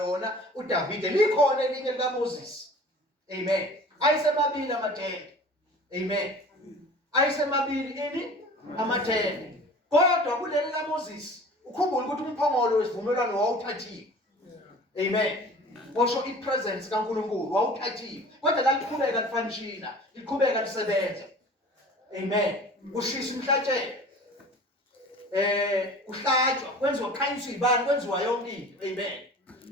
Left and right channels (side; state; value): both; normal; correlation 0.43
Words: uDavide. Likhona elinye likaMoses. Amen. Ayisemabili amathende. Amen. Ayisemabili amathende. Kodwa kuleli kaMoses ukhumbula ukuthi umphongolo wesivumelwano wawuthathiwe. Amen. Washo ipresence kaNkulunkulu wawuthathiwe. Kodwa laliqhubeka lifanishina, liqhubeka lisebenza. Amen. Kushisa umhlatshelo. Kuhlatshwa, kwenziwa khanyiswa ibani, kwenziwa yonke into. Amen.